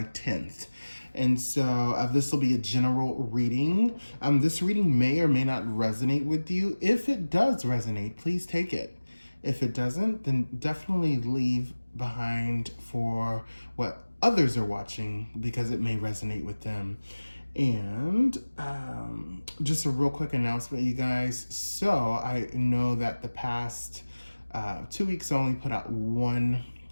10th. And so this will be a general reading. This reading may or may not resonate with you. If it does resonate, please take it. If it doesn't, then definitely leave behind for what others are watching because it may resonate with them. And just a real quick announcement, you guys. So I know that the past 2 weeks I only put out 1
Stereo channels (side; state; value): both; inverted; correlation -1.00